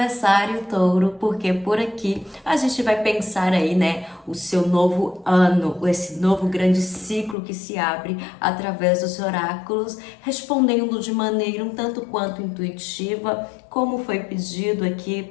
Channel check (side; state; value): right; drops out; at 7.4 s